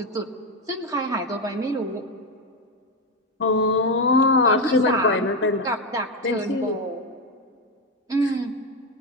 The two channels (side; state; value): both; normal; correlation 0.09